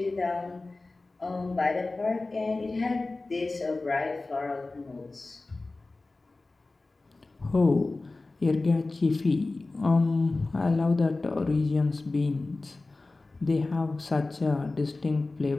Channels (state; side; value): quieter; right; 3.3 dB